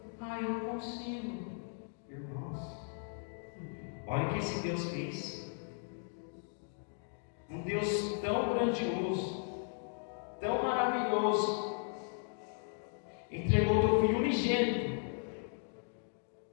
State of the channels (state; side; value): silent; right; 53 dB below the other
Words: ah, eu não consigo. Irmãos, olha o que esse Deus fez. Um Deus tão grandioso, tão maravilhoso, entregou o seu Filho unigênito,